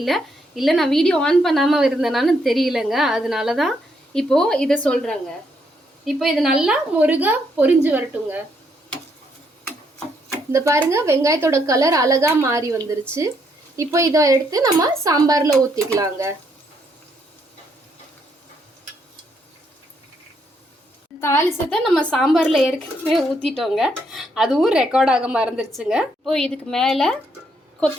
இல்லை நான் வீடியோ ஆன் பண்ணாமல் இருந்தேனான்னு தெரியலங்க, அதனால தான் இப்போது இதை சொல்கிறேங்க. இப்போ இது நல்லா முருகா பொரிஞ்சு வரட்டுங்க. இந்த பாருங்க, வெங்காயத்தோட கலர் அழகா மாறி வந்துருச்சு. இப்போ இதை எடுத்து நம்ம சாம்பாரில் ஊற்றிக்கலாங்க. தாளிசத்தை நம்ம சாம்பாரில் ஏற்கனவே ஊற்றிட்டோங்க, அதுவும் ரெக்கார்ட் ஆக மறந்துருச்சுங்க. இப்போ இதுக்கு மேலே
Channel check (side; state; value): both; normal; correlation 0.74